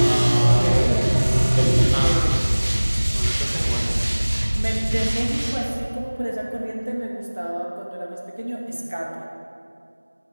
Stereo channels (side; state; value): both; inverted; correlation -1.00